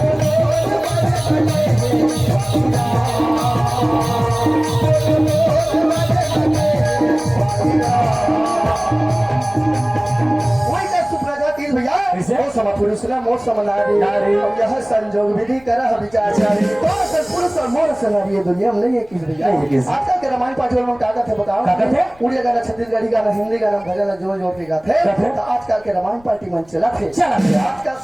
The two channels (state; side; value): noise; left; rumble, 27 dB below the sound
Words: वही का सुप्रजा तीन भैया कैसे? ओ सम पुरुष न मोर सम नारी नारी। यह संजोग विधि करह विचारचारी कौन सा पुरुष और मोर से नारी ये दुनिया में नहीं है किस भैया नहीं है किस। आजकल के रामायण पाठ में क्या कहते बताओ क्या कहते? उड़िया गाना छत्तीसगढ़ी गाना हिंदी गाना भजन जोर जोर के गाते कहते? तो आजकल के रामायण पार्टी मन चला थे चला थे। आजकल